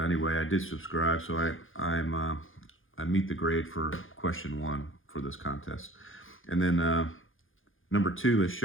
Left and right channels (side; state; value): right; late; 0.58 ms